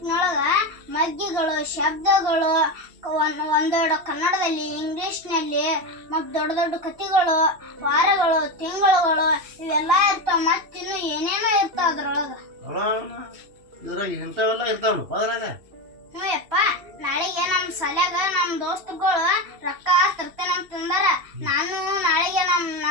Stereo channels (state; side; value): late; left; 2.7 ms